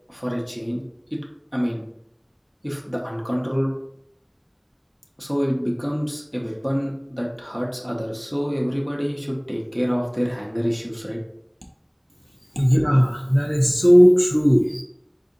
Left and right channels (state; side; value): identical; both; correlation 1.00